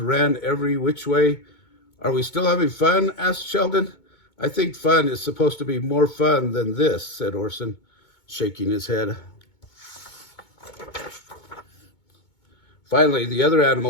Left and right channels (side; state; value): right; late; 2.2 ms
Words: every which way. "Are we still having fun?" asked Sheldon. "I think fun is supposed to be more fun than this," said Orson, shaking his head. Finally, the other